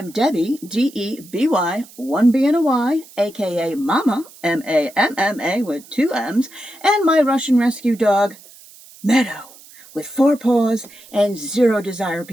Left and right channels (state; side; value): noise; right; hiss, 22 dB below the sound